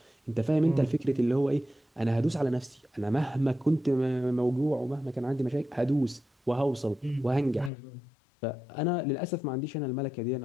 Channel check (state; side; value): drops out; right; at 7.7 s